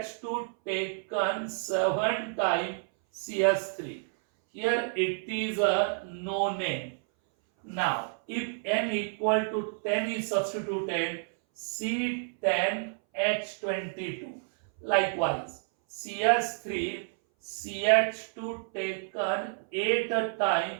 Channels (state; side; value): silent; left; 58 dB below the other